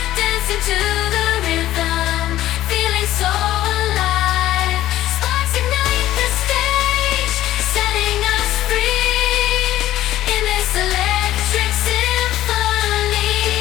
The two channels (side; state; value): right; quieter; 14.1 dB